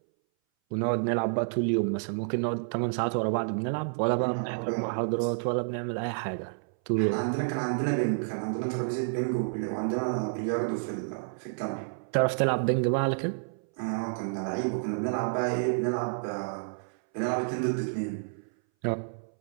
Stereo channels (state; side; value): silent; left; 58 dB below the other